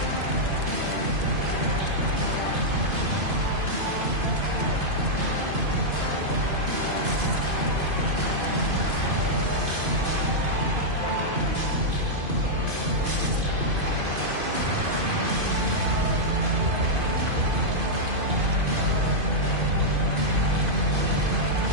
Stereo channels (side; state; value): left; late; 2.5 ms